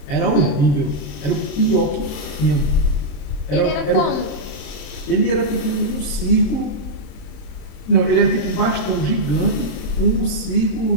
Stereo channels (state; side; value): late; right; 27 ms